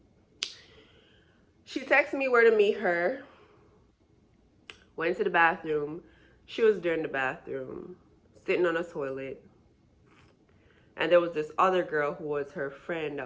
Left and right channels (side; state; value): both; identical; correlation 1.00